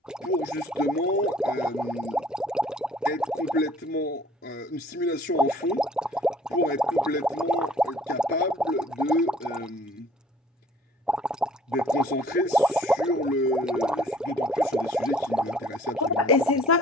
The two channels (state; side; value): normal; both; correlation 0.54